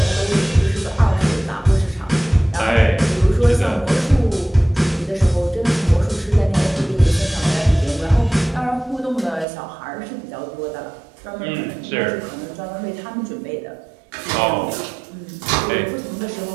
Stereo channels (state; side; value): drops out; left; at 9.5 s